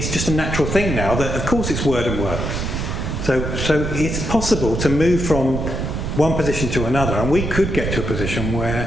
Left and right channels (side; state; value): right; noise; rumble, 3 dB below the sound